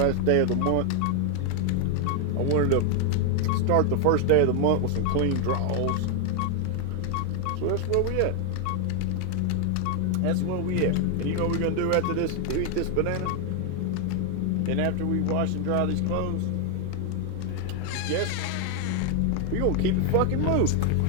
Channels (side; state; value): both; different; correlation 0.00